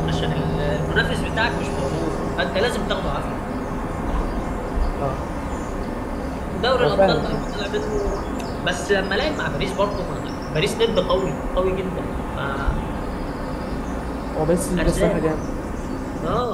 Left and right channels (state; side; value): identical; both; correlation 1.00